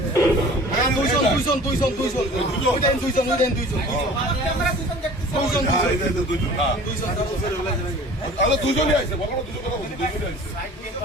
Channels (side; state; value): both; normal; correlation 0.44